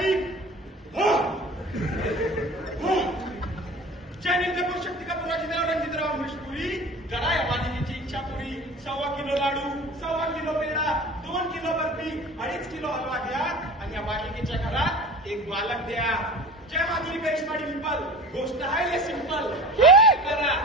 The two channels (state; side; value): normal; both; correlation 0.38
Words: शक्ती का पुरा जिल्हा रणजितराव मिष्पुरी जरा या मालिकेची इच्छा पुरी. 1.25 kilo laddoo, 1.25 kilo peda, 2 kilo barfi, 2.5 kilo halwa घ्या आणि या मालिकेच्या घरात एक बालक द्या. जय माधुरी करिश्मा डिंपल. गोष्ट आहे हे सिंपल. करा